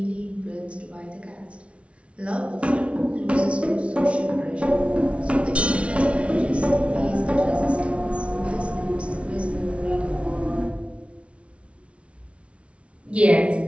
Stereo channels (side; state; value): left; late; 0.061 ms